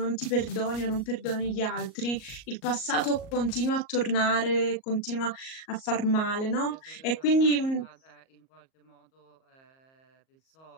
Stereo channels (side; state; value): right; late; 38 ms